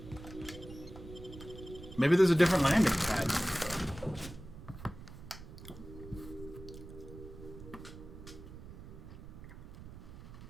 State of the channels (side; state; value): right; noise; rumble, 14 dB below the sound